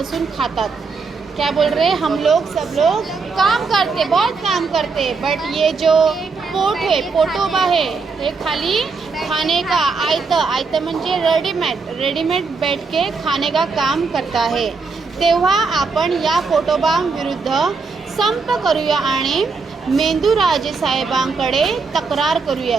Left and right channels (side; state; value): left; quieter; 4.6 dB